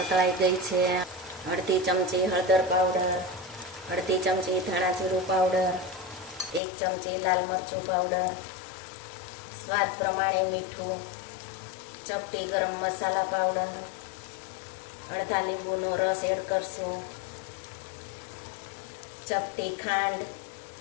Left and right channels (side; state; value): right; drops out; at 6.6 s